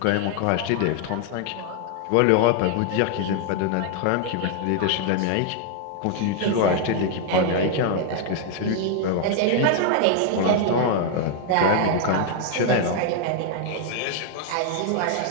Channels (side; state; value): both; different; correlation 0.00